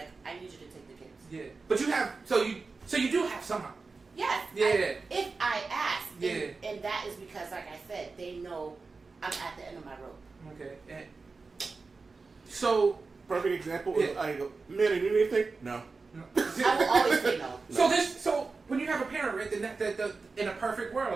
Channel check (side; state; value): left; quieter; 4.2 dB